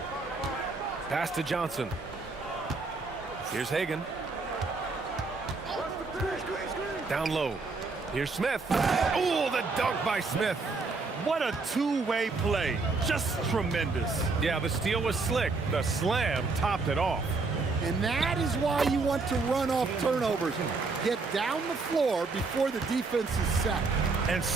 Pass to Johnson. Here's Hagan. Down low. Here's Smith. Oh, the dunk by Smith. What a two-way play. Just tremendous. Yeah, the steal was slick. The slam topped it off. And that is why you want to run off turnovers. Get down the floor before the defense is set. And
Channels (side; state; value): left; quieter; 4.0 dB